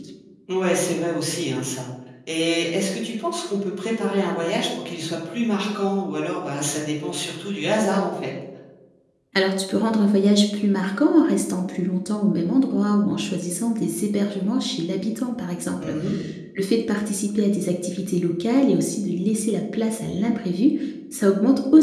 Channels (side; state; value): both; identical; correlation 1.00